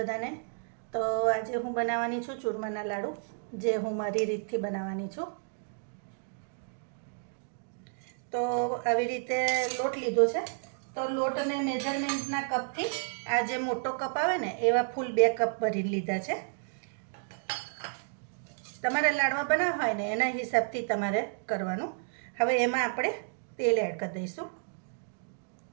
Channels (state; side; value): silent; left; digital silence